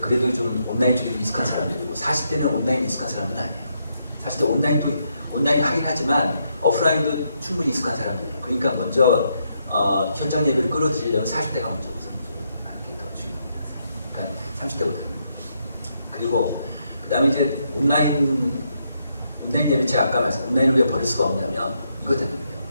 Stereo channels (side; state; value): both; inverted; correlation -0.78